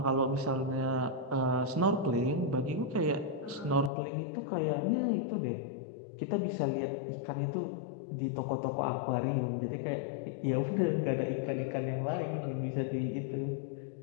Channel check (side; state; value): right; drops out; at 3.9 s